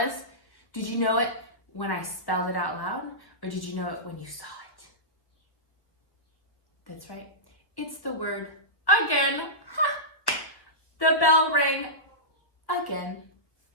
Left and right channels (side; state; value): right; late; 1.3 ms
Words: Did you know it when I spelled it out loud? Or did you know it when you saw it? That's right. It's the word again. Ha! The bell rang again.